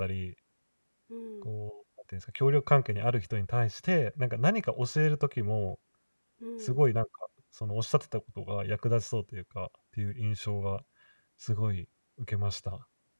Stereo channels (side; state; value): both; inverted; correlation -1.00